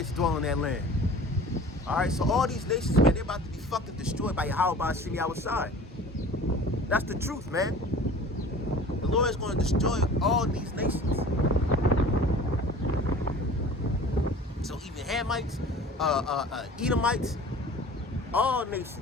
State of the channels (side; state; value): both; normal; correlation 0.43